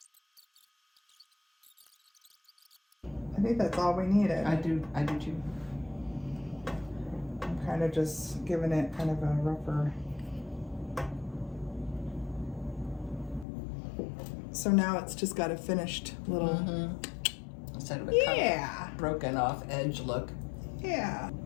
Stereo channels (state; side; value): drops out; right; at 13.5 s